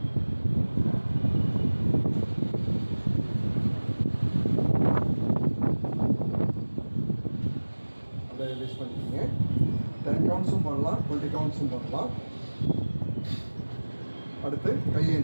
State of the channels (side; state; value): both; inverted; correlation -1.00